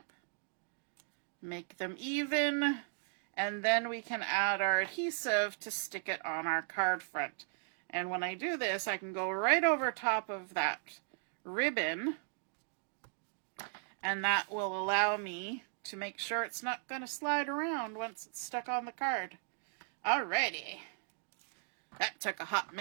make them even, and then we can add our adhesive to stick it on our card front. And when I do this, I can go right over top of that ribbon, and that will allow me to make sure it's not going to slide around once it's stuck on the card. Alrighty. That took a hot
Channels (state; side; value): silent; left; digital silence